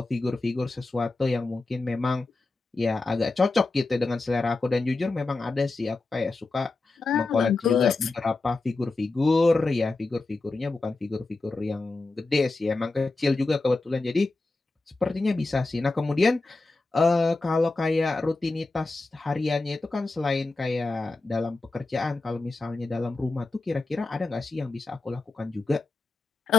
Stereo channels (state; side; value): quieter; right; 3.3 dB